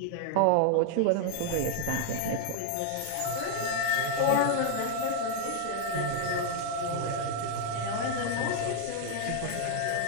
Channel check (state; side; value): different; both; correlation 0.00